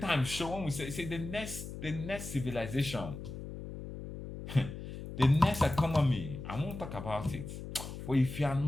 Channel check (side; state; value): left; noise; hum, 9 dB below the sound